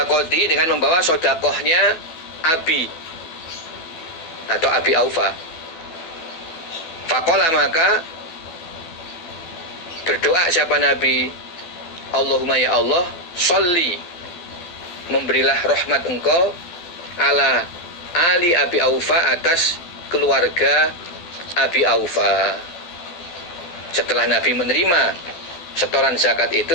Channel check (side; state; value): right; late; 12 ms